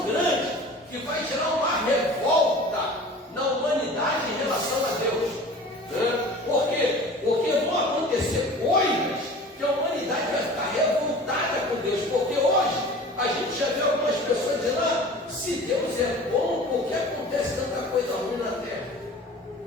grande que vai gerar uma revolta na humanidade em relação a Deus, né? Por quê? Porque vão acontecer coisas que a humanidade vai ficar revoltada com Deus, porque hoje a gente já vê algumas pessoas dizendo: se Deus é bom, por que acontece tanta coisa ruim na terra?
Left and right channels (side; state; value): both; normal; correlation 0.41